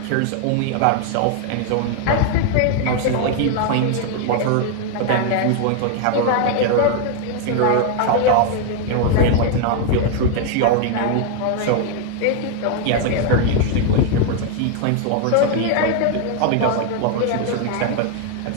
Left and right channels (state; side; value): different; both; correlation 0.01